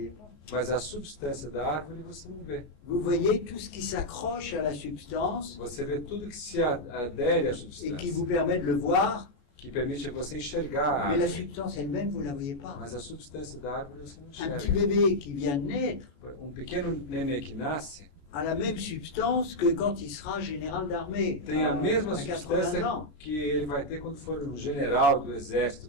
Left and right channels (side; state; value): right; late; 14 ms